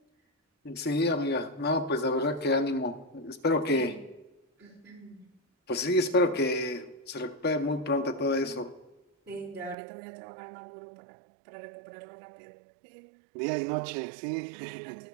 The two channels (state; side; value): drops out; left; at 9.8 s